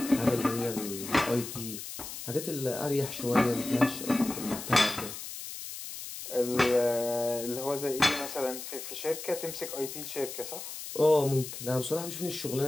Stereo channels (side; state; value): left; noise; hiss, 9 dB below the sound